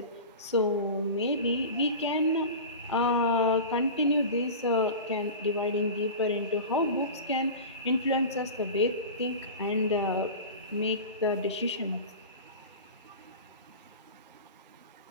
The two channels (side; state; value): both; inverted; correlation -0.31